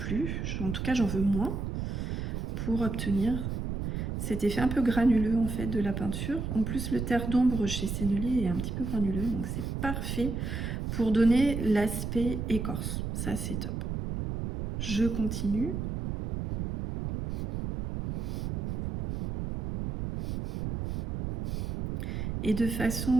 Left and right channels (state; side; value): noise; right; rumble, 3 dB below the sound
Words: en tout cas j'en veux moins, pour obtenir cet effet un peu granuleux en fait de la peinture. En plus, le terre d'ombre chez Sennelier est un petit peu granuleux, donc c'est parfait pour donner l'aspect écorce. Ça, c'est top. Je continue. Et de